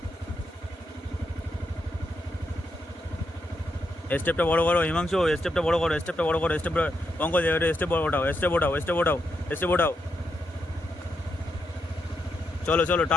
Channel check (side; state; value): both; normal; correlation 0.82